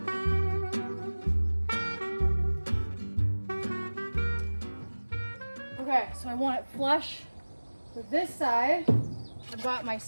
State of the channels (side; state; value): both; inverted; correlation -1.00